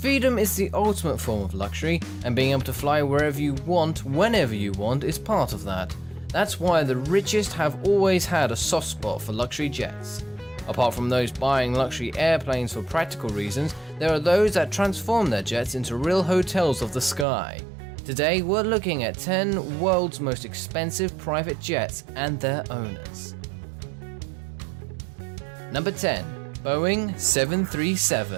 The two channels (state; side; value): drops out; left; at 17.2 s